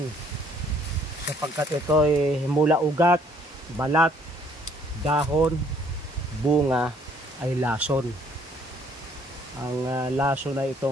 sapagkat ito ay mula ugat, balat, dahon, bunga ay lason. Ang lason na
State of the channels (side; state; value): both; normal; correlation 0.63